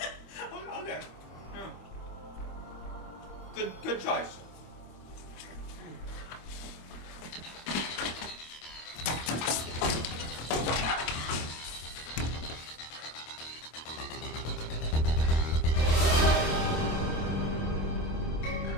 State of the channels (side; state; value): right; late; 26 ms